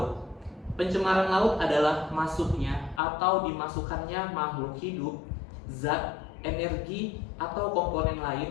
Pencemaran laut adalah masuknya atau dimasukkannya makhluk hidup, zat, energi, atau komponen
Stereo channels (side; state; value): right; drops out; at 3.0 s